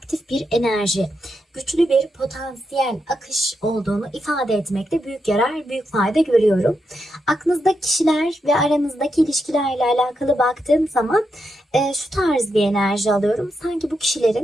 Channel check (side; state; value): both; normal; correlation 0.84